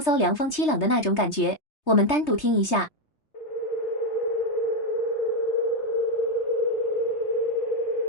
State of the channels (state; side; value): late; right; 3.3 ms